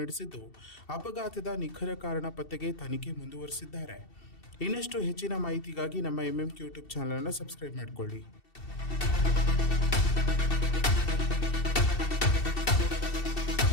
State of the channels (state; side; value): late; right; 2.7 ms